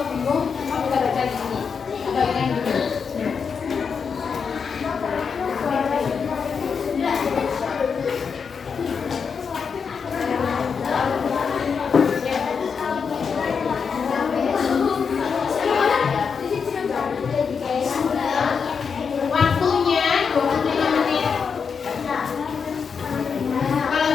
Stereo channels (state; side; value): quieter; right; 6.0 dB